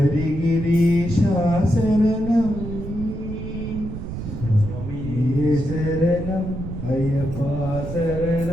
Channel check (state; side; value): noise; right; rumble, 8 dB below the sound